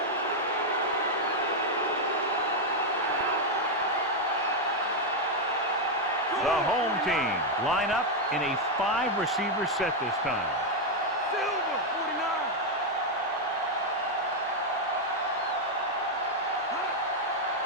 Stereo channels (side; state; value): both; normal; correlation 0.01